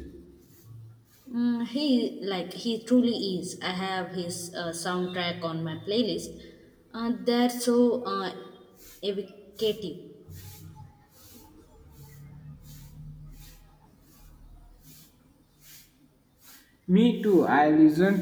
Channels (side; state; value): both; identical; correlation 1.00